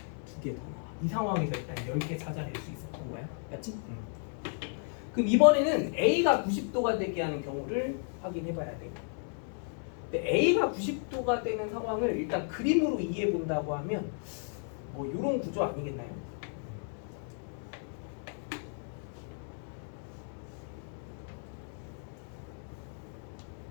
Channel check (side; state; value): right; silent; 55 dB below the other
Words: 2개 더 나와. 이 상황에서 일단 10개 찾아낼 수 있었던 거야. 맞지? 그럼 이번에는 A가 90도가 되게 하는 경우를 확인해 봐야 돼. 근데 A가 90도가 되는 상황을 일단 그림으로 이해해 본다고 하면 뭐 이런 구조 아니겠나요?